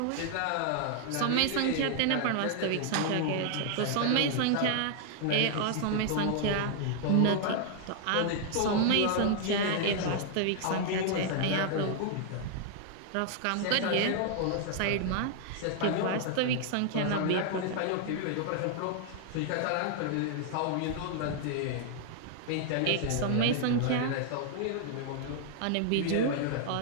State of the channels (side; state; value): both; different; correlation 0.00